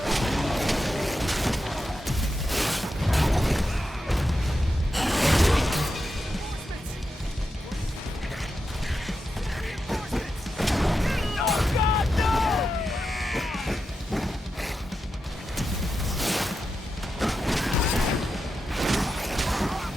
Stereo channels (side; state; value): both; normal; correlation 0.88